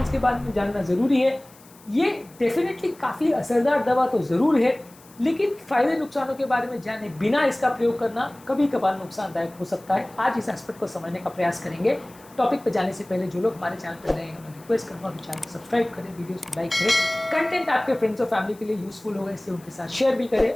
के बारे में जानना ज़रूरी है। ये डेफिनेटली काफ़ी असरदार दवा तो ज़रूर है, लेकिन फ़ायदे नुकसानों के बारे में जाने बिना इसका प्रयोग करना कभी कभार नुकसानदायक हो सकता है। आज इस एस्पेक्ट को समझने का प्रयास करेंगे। टॉपिक पे जाने से पहले जो लोग हमारे चैनल पर नए हैं, उन्हें रिक्वेस्ट करूँगा कि चैनल को सब्सक्राइब करें, वीडियोस को लाइक करें। कंटेंट आपके फ्रेंड्स और फैमिली के लिए यूजफुल होगा, इसलिए उनके साथ शेयर भी करें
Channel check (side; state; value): left; noise; hiss, 25 dB below the sound